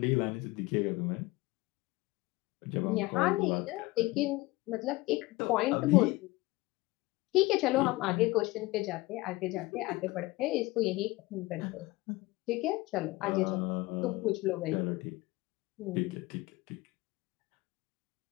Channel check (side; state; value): right; quieter; 21.0 dB